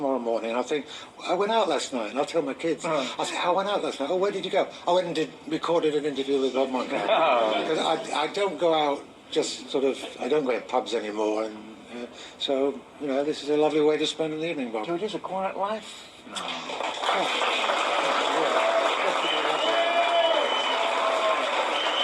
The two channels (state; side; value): identical; both; correlation 1.00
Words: morning and I'll think, I went out last night. And I'll tell my kids, I'll say, I went out last night. Oh, where did you go? I went and recorded an interview with Bob Monkhouse. Because I don't go out just sort of, I don't go to pubs anymore. And so, this is a lovely way to spend an evening, Bob. So it is a quiet life?